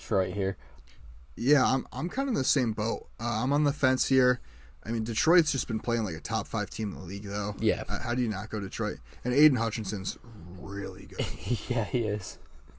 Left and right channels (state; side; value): identical; both; correlation 1.00